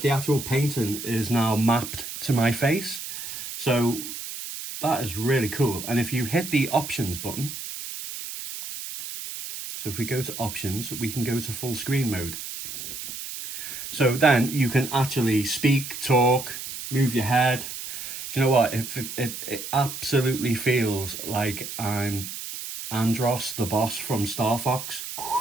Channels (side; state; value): right; noise; hiss, 8 dB below the sound